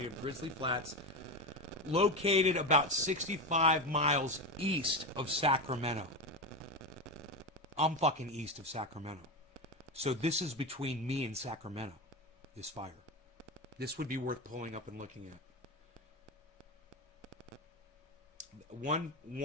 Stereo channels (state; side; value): normal; both; correlation 0.17